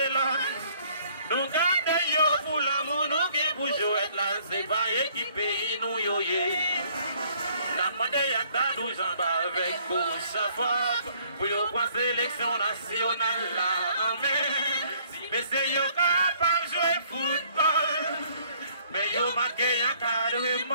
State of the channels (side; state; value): both; inverted; correlation -0.62